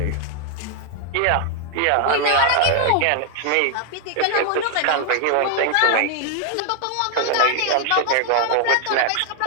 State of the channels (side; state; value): both; different; correlation 0.00